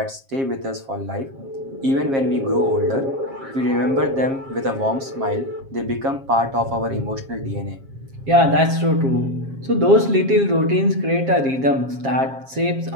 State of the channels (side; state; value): left; late; 7.4 ms